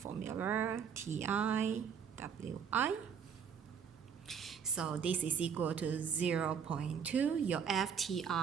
Ti, Wi. So this is equal to 0.2. Your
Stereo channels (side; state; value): left; quieter; 7.2 dB